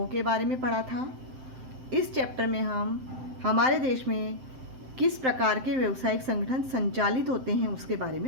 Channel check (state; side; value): late; left; 7.7 ms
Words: के बारे में पढ़ा था। इस चैप्टर में हम हमारे देश में किस प्रकार के व्यावसायिक संगठन संचालित होते हैं उसके बारे